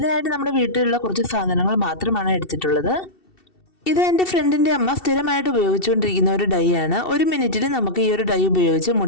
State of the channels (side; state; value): right; late; 2.7 ms